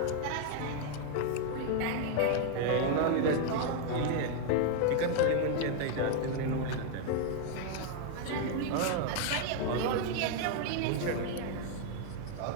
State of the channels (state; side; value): different; both; correlation 0.00